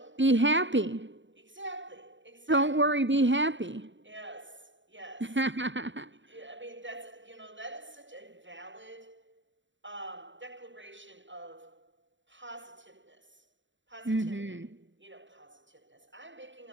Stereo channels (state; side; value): late; left; 0.54 ms